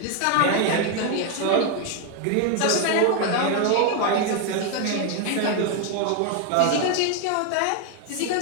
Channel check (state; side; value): different; both; correlation 0.01